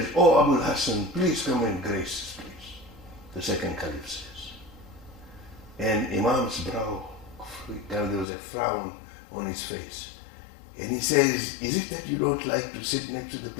oh, Abul Hassan, please come and grace this place. The second caliph says. And Imam's brow, there was a frown on his face. And he says, is it that you don't like to sit next to the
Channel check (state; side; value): drops out; right; at 8.2 s